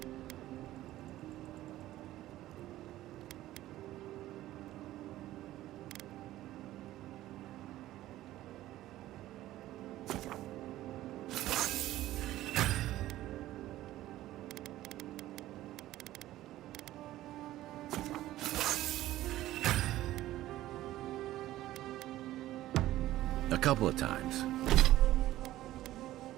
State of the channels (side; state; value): left; quieter; 15.0 dB